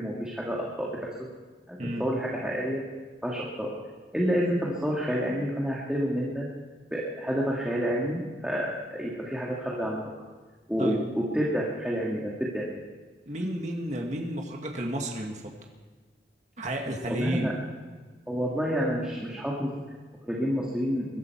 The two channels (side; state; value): both; normal; correlation 0.76